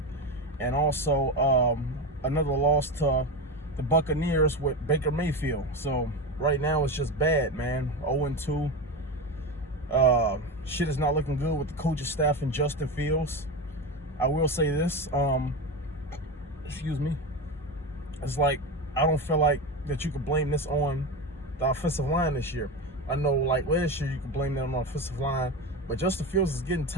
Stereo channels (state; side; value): normal; both; correlation 0.20